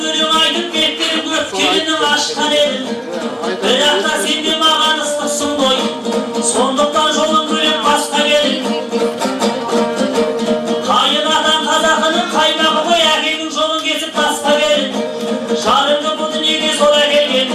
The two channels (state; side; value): identical; both; correlation 1.00